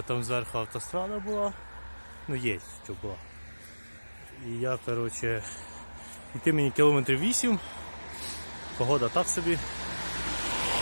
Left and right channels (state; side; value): inverted; both; correlation -1.00